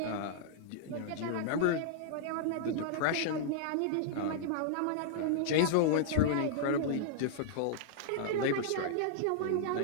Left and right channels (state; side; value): different; both; correlation -0.01